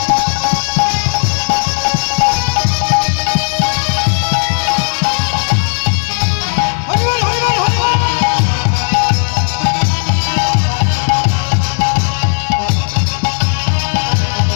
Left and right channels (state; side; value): silent; right; 64 dB below the other